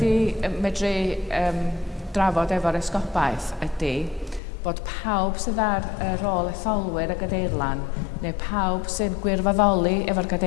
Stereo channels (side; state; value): right; drops out; at 4.4 s